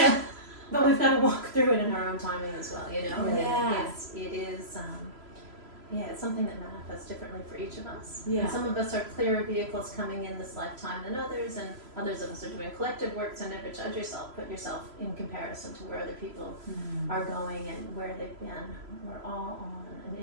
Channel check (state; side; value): late; left; 3.0 ms